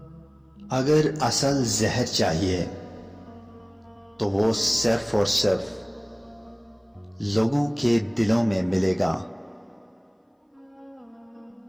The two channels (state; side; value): identical; both; correlation 1.00